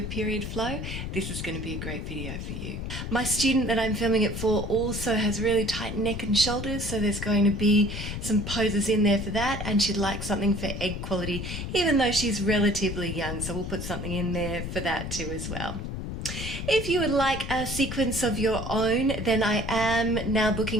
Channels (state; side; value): noise; left; rumble, 5 dB below the sound